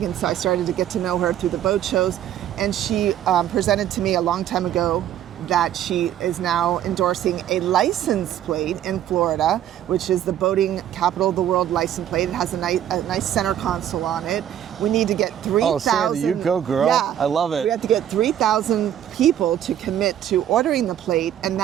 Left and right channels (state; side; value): quieter; left; 10.9 dB